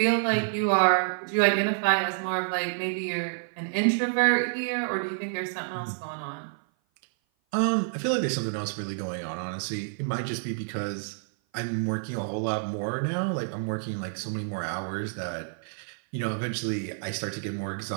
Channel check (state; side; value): silent; left; 55 dB below the other